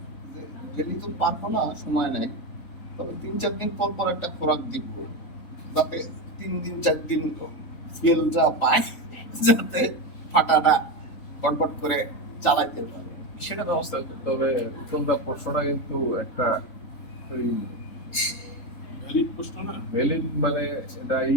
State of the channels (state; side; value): late; right; 3.7 ms